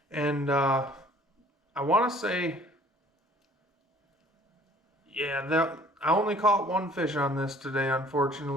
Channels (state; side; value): normal; both; correlation 0.54